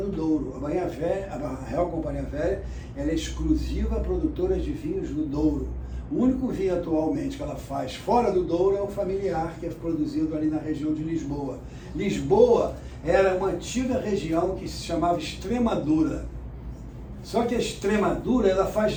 Douro. A Real Companhia Velha, ela é exclusiva produtora de vinhos do Douro. O único vinho atualmente que ela faz fora do Douro é o familiar, que é produzido ali na região de Lisboa. Lisboa era uma antiga região que se chamava Extremadura. Só que a Extremadura, ela faz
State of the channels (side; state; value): both; identical; correlation 1.00